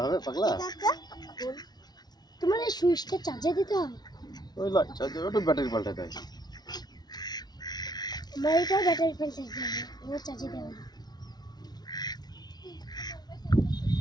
হবে পাগলা? তোমার এই সুইচটা চার্জে দিতে হয়? ওই লাইট চার্জার, ওটা ব্যাটারি পাল্টাতে হয়। আমার এটাও ব্যাটারি ফেল চার্জ হবে, ওর চার্জে দেওয়া হয়।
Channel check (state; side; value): late; right; 0.19 ms